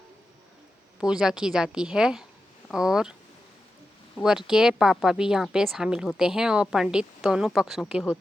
पूजा की जाती है और वर के पापा भी यहाँ पे शामिल होते हैं और पंडित दोनों पक्षों के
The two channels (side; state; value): both; normal; correlation 0.91